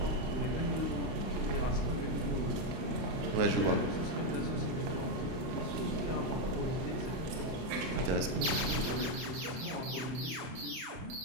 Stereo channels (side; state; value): left; late; 32 ms